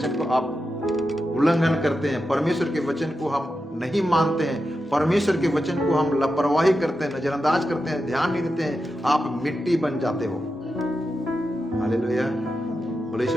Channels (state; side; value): normal; both; correlation 0.89